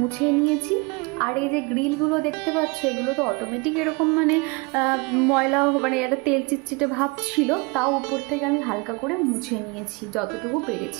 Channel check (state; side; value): quieter; left; 28.6 dB